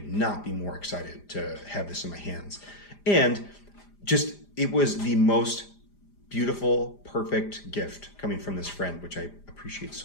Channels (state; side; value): late; right; 5.0 ms